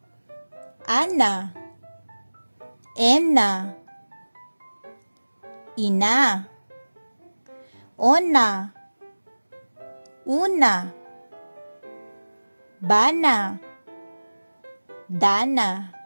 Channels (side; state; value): both; inverted; correlation -1.00